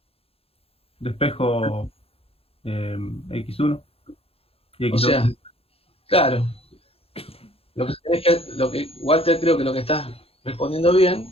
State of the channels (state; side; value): late; right; 0.28 ms